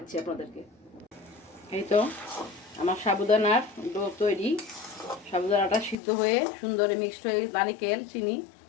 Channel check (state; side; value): drops out; right; at 6.0 s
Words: আপনাদেরকে। এই তো আমার সাবুদানার ডো তৈরি। সাবুদানাটা সিদ্ধ হয়ে সুন্দর মিক্সড হয়ে নারিকেল চিনি